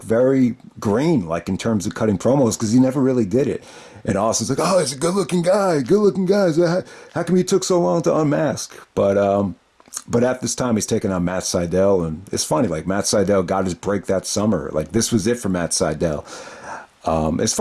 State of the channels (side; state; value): both; identical; correlation 1.00